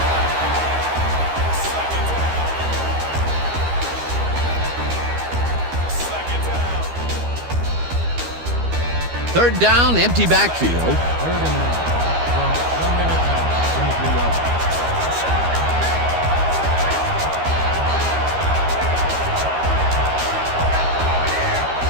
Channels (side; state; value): left; late; 12 ms